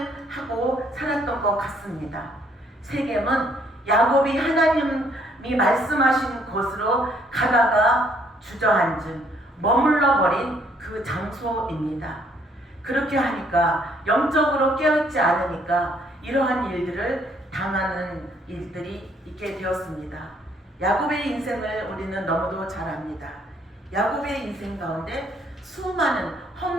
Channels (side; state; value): both; normal; correlation 0.66